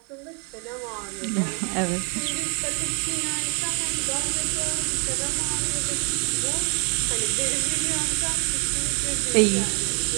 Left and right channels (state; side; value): quieter; left; 36.0 dB